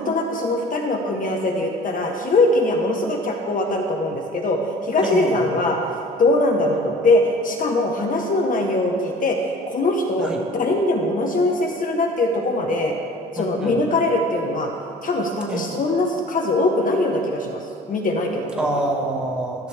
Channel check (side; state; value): both; normal; correlation 0.46